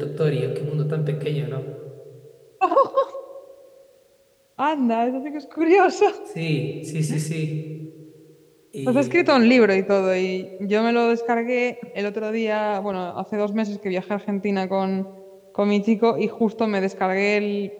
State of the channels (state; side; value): identical; both; correlation 1.00